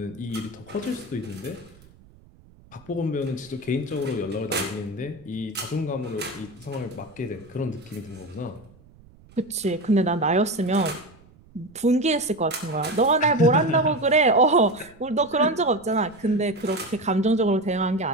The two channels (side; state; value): right; noise; rumble, 26 dB below the sound